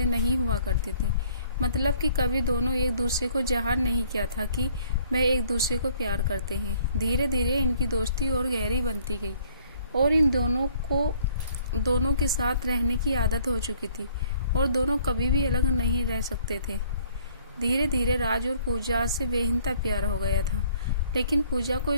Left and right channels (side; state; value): both; inverted; correlation -0.60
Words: नहीं हुआ करती थी। मतलब कि कभी दोनों एक दूसरे को ज़ाहिर नहीं किया था कि वह एक दूसरे को प्यार करते हैं। धीरे धीरे इनकी दोस्ती और गहरी बनती गई और इन दोनों को दोनों के साथ रहने की आदत हो चुकी थी और दोनों कभी भी अलग नहीं रह सकते थे। धीरे धीरे राज और पूजा से बेहिंता प्यार हो गया था, लेकिन पूजा को